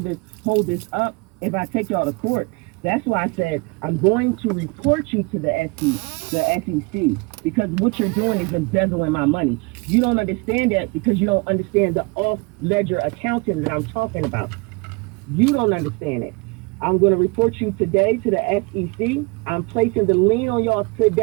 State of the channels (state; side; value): quieter; left; 28.5 dB